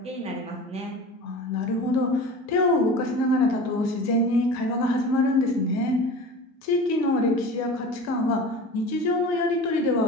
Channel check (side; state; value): both; normal; correlation 0.35